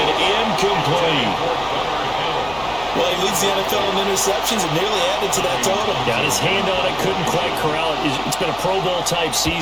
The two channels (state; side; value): noise; left; hum, 18 dB below the sound